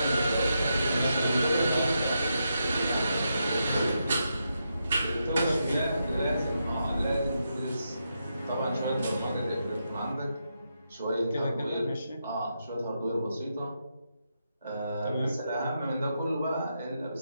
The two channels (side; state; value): both; inverted; correlation -0.84